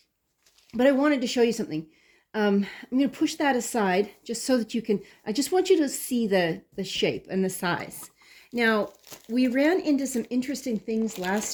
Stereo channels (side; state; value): both; identical; correlation 1.00